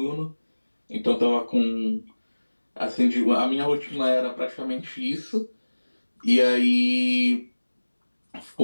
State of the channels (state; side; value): inverted; both; correlation -1.00